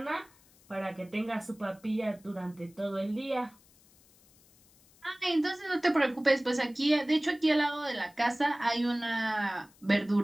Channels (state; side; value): noise; left; hiss, 29 dB below the sound